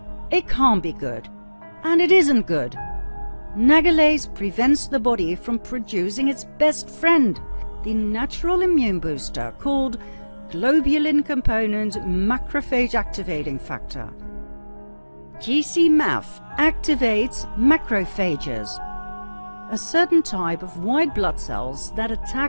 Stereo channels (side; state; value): both; inverted; correlation -1.00